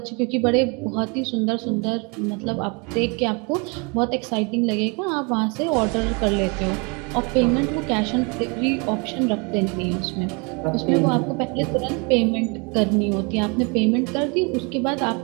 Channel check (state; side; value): quieter; left; 32.1 dB